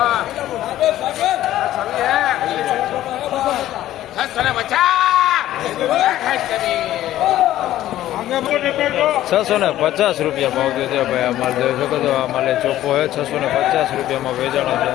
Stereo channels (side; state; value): right; quieter; 13.6 dB